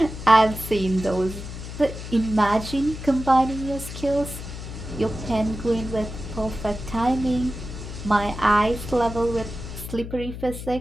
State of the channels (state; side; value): noise; left; hum, 9 dB below the sound